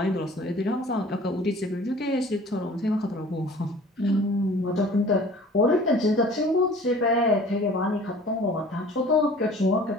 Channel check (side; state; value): both; normal; correlation 0.47